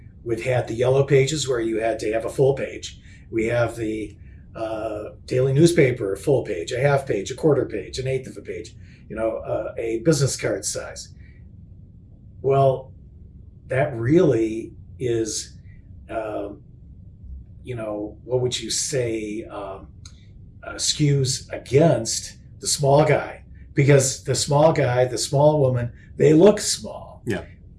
We've had the yellow pages where you had to have a full page. We have the daily newspaper, a full page, a half page, a quarter page, an eighth of a page, a business card size. Well, that really is, what would you say, skews against the small guy, because the small guy, the small woman, they look small. Yeah.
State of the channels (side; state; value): both; identical; correlation 1.00